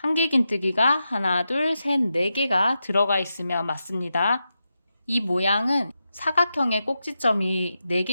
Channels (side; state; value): both; inverted; correlation -0.89